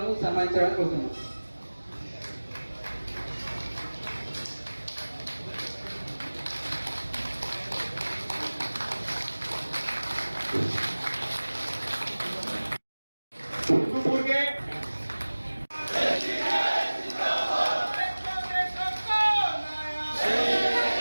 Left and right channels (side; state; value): both; inverted; correlation -1.00